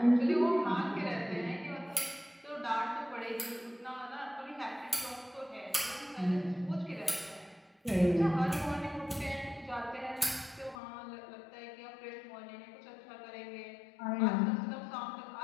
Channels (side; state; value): right; drops out; at 10.8 s